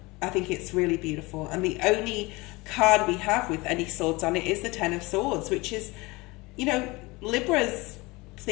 I think it's really beautiful. And the only card we have with any swords on it is the Ten of Swords, which is, you know, Libra's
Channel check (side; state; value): right; quieter; 23.5 dB